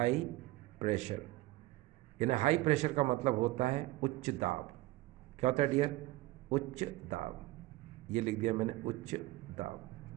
प्रेशर, यानी हाई प्रेशर का मतलब होता है उच्च दाब। क्या होता है डियर, उच्च दाब। ये लिख दिया मैंने, उच्च दाब।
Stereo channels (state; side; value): quieter; left; 18.5 dB